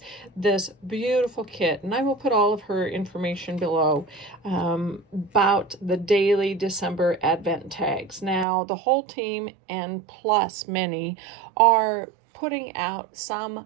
this beautiful kit, and I will put all of her information below about the daily December Advent tags. Now, the whole team and plus many are putting out some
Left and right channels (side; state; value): left; drops out; at 8.5 s